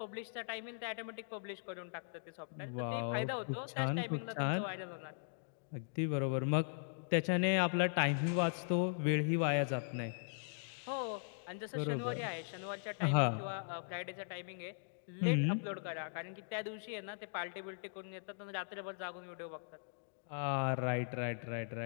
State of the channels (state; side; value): silent; right; digital silence